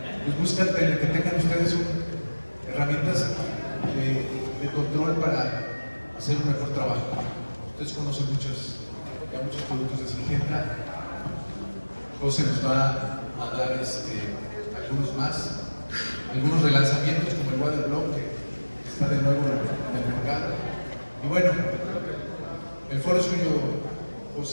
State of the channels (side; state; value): both; inverted; correlation -1.00